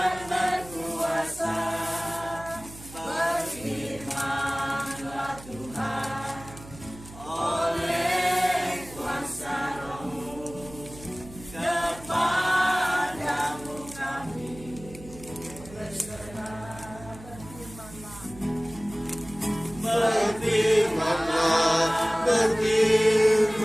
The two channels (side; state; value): right; noise; hum, 17 dB below the sound